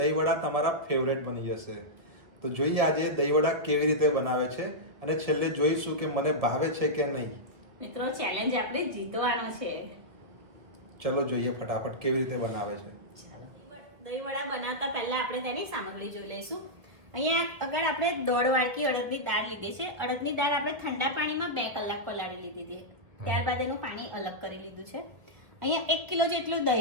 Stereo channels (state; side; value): late; left; 1.6 ms